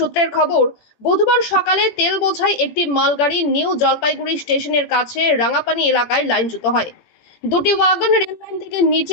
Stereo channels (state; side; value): late; right; 18 ms